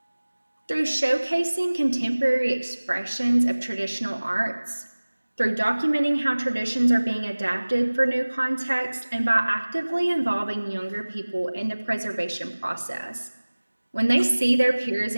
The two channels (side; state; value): both; inverted; correlation -1.00